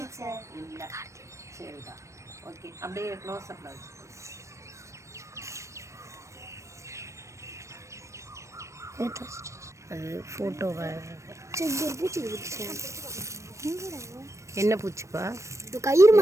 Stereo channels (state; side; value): late; left; 0.15 ms